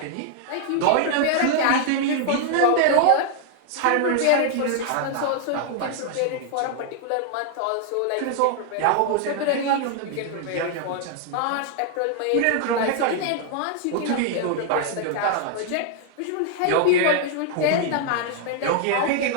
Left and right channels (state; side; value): different; both; correlation 0.00